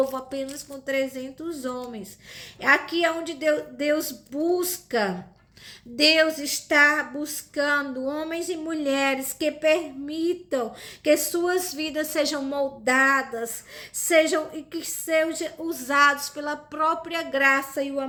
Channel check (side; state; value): both; identical; correlation 1.00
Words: apenas com 300 homens. Aqui é onde Deus busca. Deus está buscando homens e mulheres que permitam que suas vidas sejam moldadas, e que sejam usados pela própria graça e o